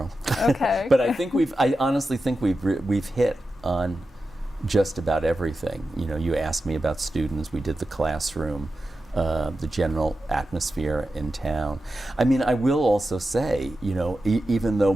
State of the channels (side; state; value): both; normal; correlation 0.91